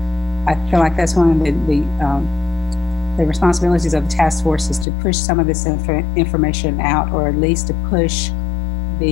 I feel like that's one of the responsibilities of the task force, is to push some of this information out, or at least to push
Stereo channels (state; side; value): drops out; right; at 4.9 s